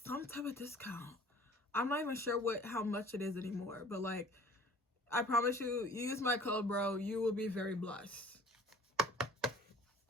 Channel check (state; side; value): normal; both; correlation 0.49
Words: type of discount. I'm not even sure how much it is anymore, but like, I promise you, use my code, bro. You will be very blessed.